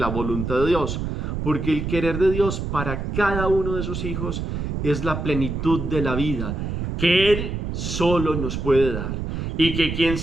la voluntad de Dios, porque el querer de Dios para cada uno de sus hijos es la plenitud de la vida, que Él solo nos puede dar, y que quien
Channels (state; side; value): noise; right; rumble, 3 dB below the sound